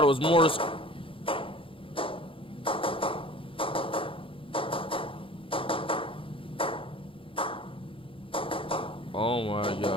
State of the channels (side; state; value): right; late; 0.26 ms